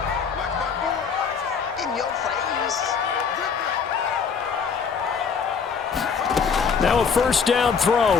Now a 1st down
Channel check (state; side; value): quieter; right; 6.0 dB